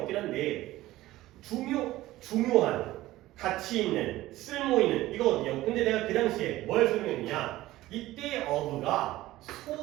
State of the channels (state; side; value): quieter; left; 16.4 dB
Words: 한데 중요한, 가치 있는, 쓸모 있는 이거거든요. 근데 내가 그 당시에 뭘 설명했냐? 이때 of가